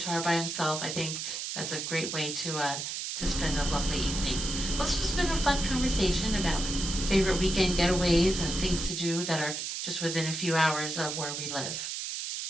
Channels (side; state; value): right; noise; hiss, 4 dB below the sound